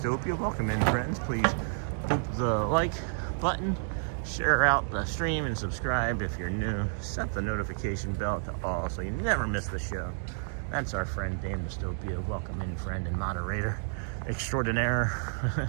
Welcome in, friends. Please hit the like button, share out the stream, and subscribe if you're new. Set the notification bell to all so you never miss the show. That's our friend Dame Dystopia. Welcome in, friend and moderator extraordinaire.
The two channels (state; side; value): silent; left; digital silence